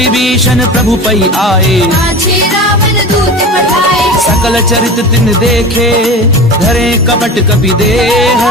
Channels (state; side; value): normal; both; correlation 0.32